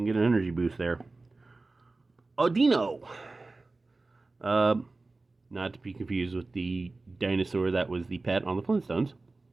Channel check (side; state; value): left; quieter; 3.4 dB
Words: get an energy boost there. Audino. Not to be confused with the dinosaur that was the pet on the Flintstones.